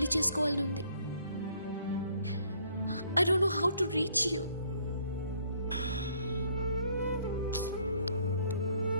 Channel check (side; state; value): both; inverted; correlation -0.64